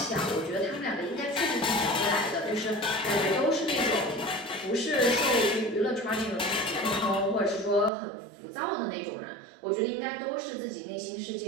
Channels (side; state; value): left; drops out; at 7.9 s